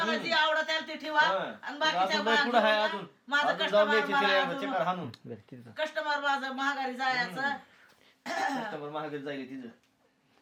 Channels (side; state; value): both; identical; correlation 1.00